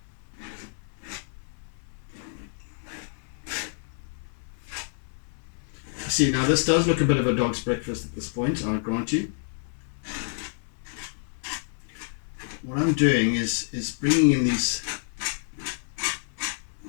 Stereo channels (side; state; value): right; silent; 59 dB below the other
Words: See, now this does look a bit of a dog's breakfast at this point, I'll grant you. What I'm doing is bringing in these